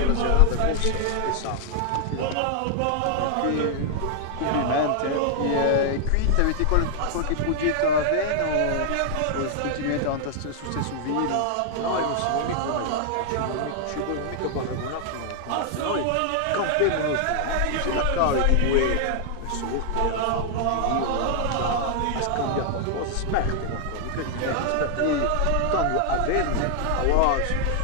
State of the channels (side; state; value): both; different; correlation 0.00